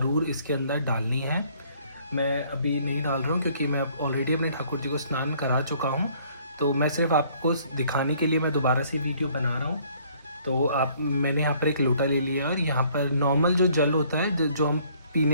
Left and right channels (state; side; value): inverted; both; correlation -0.61